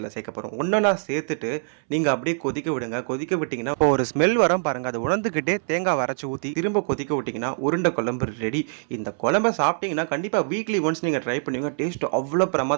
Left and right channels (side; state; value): left; silent; 62 dB below the other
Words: சேர்க்க போகிறோம். ஒன்றா சேர்த்துட்டு நீங்கள் அப்படியே கொதிக்க விடுங்க. கொதிக்க விட்டிங்கன்னா இப்போ ஒரு ஸ்மெல் வரும் பாருங்கள். அதை உணர்ந்துக்கிட்டே தேங்காய் அரைச்சி ஊற்றி திரும்ப கொதிக்க விட்டிங்கன்னா உருண்டை குழம்பு ரெடி. இந்த குழம்பை சாப்பிட்டீங்கன்னா கண்டிப்பாக வீக்லி ஒன்ஸ் நீங்கள் ட்ரை பண்ணுவீங்க. டேஸ்ட் அவ்வளோ